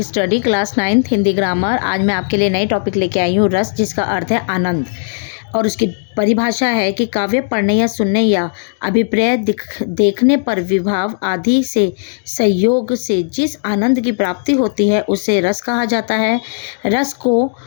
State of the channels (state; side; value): silent; right; digital silence